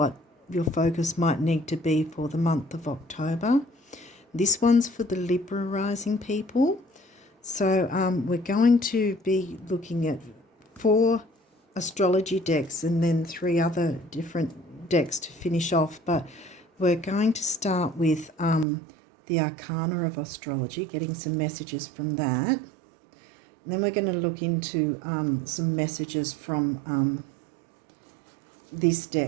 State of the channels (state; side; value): drops out; left; at 18.7 s